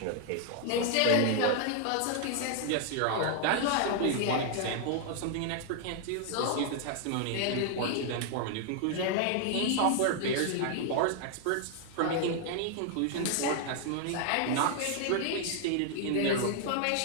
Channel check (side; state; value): both; different; correlation 0.00